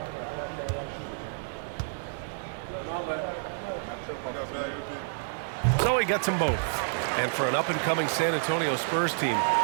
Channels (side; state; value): left; silent; digital silence